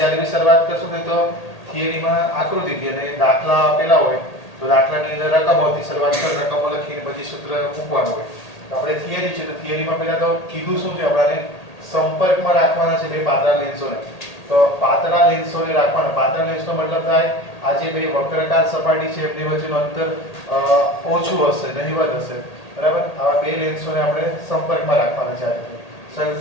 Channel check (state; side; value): late; right; 1.8 ms